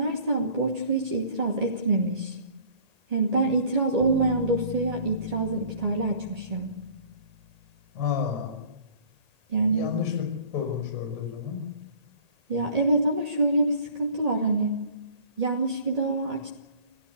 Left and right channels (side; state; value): left; late; 1.8 ms